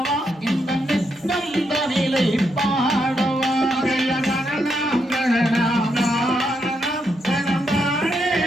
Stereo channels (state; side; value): normal; both; correlation 0.80